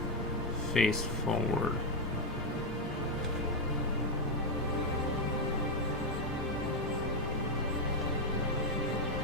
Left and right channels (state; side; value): normal; both; correlation 0.04